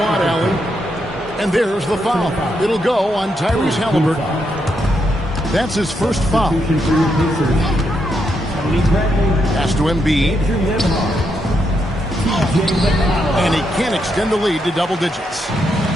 Allie. And there's the foul. It'll go on Tyrese Halliburton. That's his first foul. Pass to Embiid. And he can't extend the lead to double digits.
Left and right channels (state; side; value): normal; both; correlation 0.80